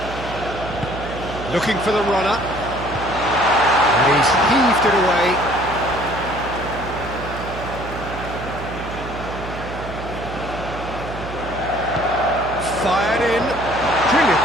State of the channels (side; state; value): right; noise; hum, 10 dB below the sound